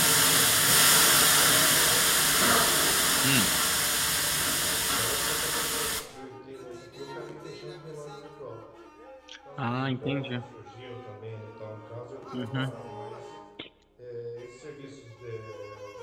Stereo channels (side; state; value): both; identical; correlation 1.00